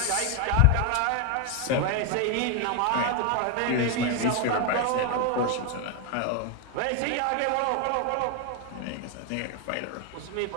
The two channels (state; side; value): different; both; correlation 0.01